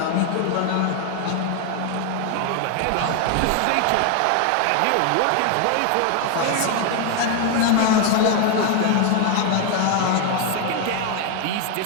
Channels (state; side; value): different; both; correlation 0.01